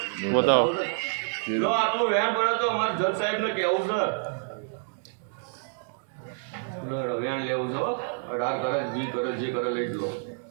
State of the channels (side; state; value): left; silent; 59 dB below the other